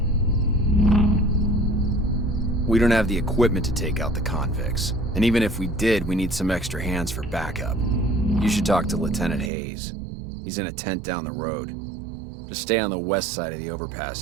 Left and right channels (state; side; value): drops out; left; at 9.5 s